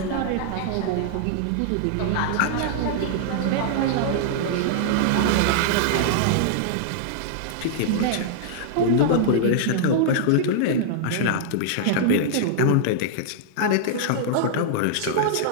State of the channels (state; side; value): different; both; correlation -0.01